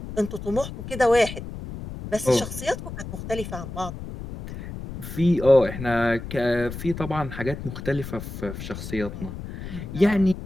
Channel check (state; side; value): noise; left; rumble, 9 dB below the sound